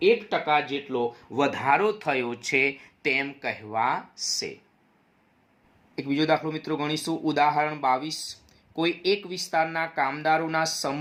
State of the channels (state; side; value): identical; both; correlation 1.00